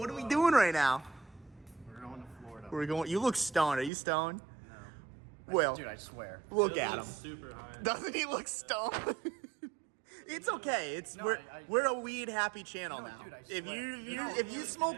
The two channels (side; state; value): left; drops out; at 3.9 s